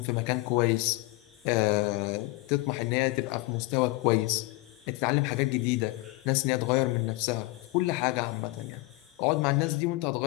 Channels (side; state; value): right; quieter; 21.3 dB